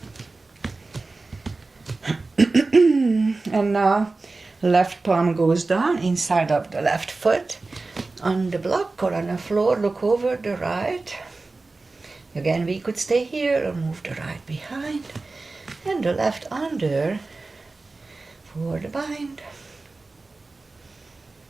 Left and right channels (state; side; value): quieter; left; 3.5 dB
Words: And now left palm goes down inside of the left foot. On the block or on the floor, look over the right. Again, we could stay here or move the right behind. And the left under for the bind.